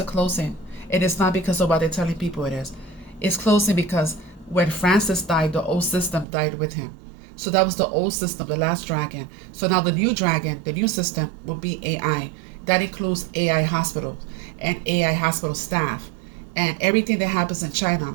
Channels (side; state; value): left; drops out; at 6.2 s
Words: closing. It is not because of what they're telling people it is. It's closing because when Francis died, the old system died with him. So that was the old system, the last dragon. So now the new dragon, the new system will be AI. That includes AI hospitals and AI hospital staff. And everything that happens in